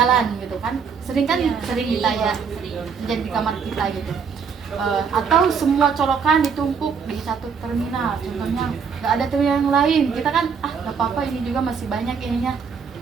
gitu kan? Sering kita ya terjadi di kamar kita gitu. Atau semua colokan ditumpuk di satu terminal, contohnya nggak ada terminal yang lain, kita kan nggak apa-apa, ini juga masih banyak ininya,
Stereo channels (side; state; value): left; quieter; 6.2 dB